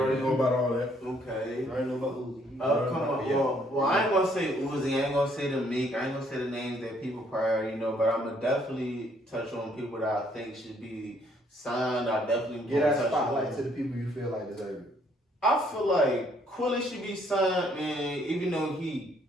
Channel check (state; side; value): normal; both; correlation 0.66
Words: down know about all that. Okay. I already know about Uzi. Come on. Yeah. Well, I ain't gonna say Uzi. I ain't gonna say the Meek. I ain't gonna say the names that people probably already know. But I'm gonna definitely touch on people that I think should be signed. I definitely Get gonna that touch spotlight on. to the people you feel like deserve it. I feel like Quilly should be signed, man. Even though he